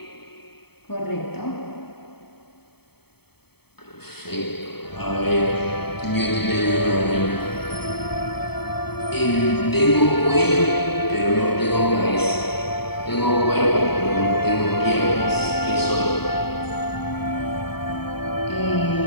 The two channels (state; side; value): late; right; 0.97 ms